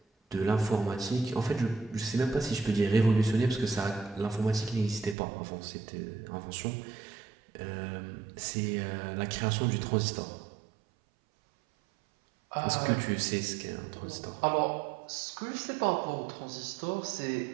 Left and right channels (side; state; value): left; drops out; at 5.2 s